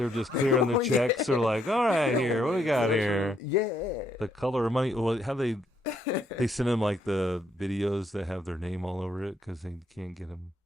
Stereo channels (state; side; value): normal; both; correlation 0.73